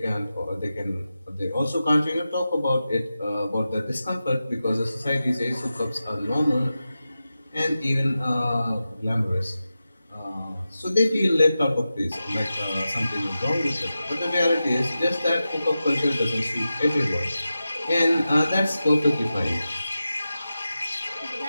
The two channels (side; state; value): both; inverted; correlation -0.92